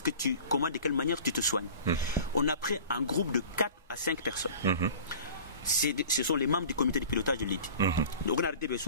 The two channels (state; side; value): inverted; both; correlation -0.42